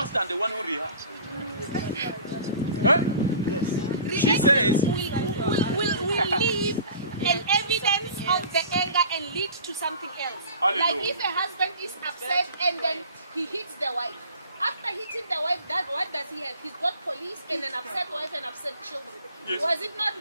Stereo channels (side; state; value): both; inverted; correlation -0.43